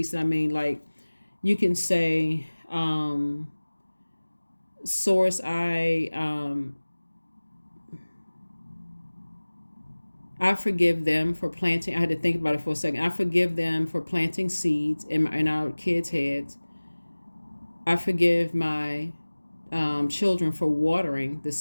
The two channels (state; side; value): inverted; both; correlation -1.00